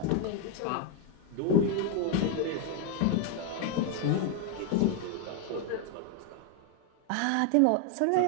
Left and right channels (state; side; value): different; both; correlation 0.01